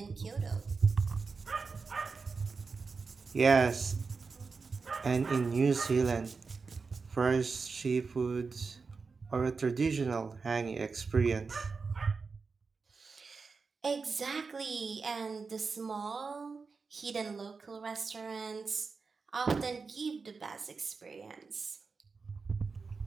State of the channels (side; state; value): left; quieter; 4.7 dB